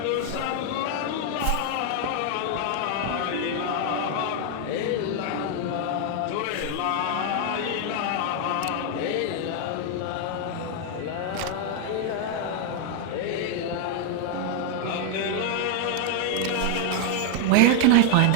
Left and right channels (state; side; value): different; both; correlation 0.00